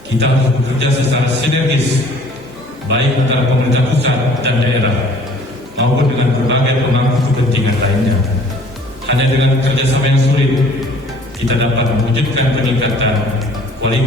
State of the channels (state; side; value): normal; both; correlation 0.53